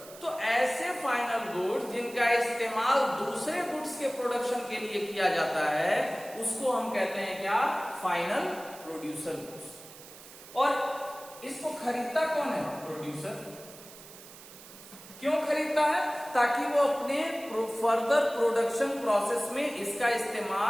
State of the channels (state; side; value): noise; right; hiss, 18 dB below the sound